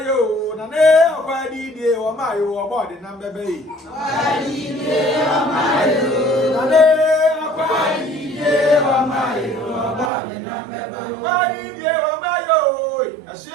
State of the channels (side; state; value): left; drops out; at 10.1 s